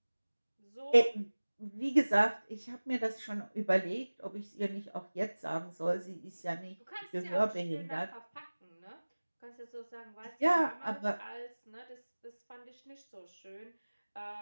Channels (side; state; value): both; inverted; correlation -1.00